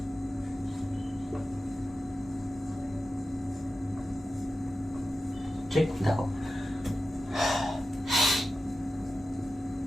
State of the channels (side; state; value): both; normal; correlation 0.93